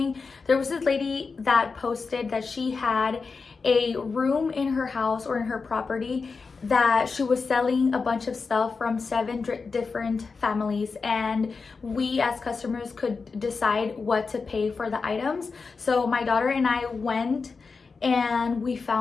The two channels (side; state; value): right; quieter; 4.7 dB